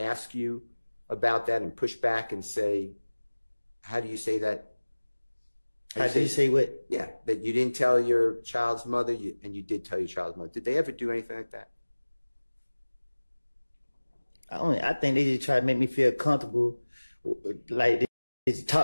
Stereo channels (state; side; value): inverted; both; correlation -1.00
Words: you about that and push back and say, how do you say that? How do you say what? Yeah, that you didn't tell your child's mother, and you did tell your child's mother. Did they ever do anything like that? I think they just try to make me feel comfortable. Like they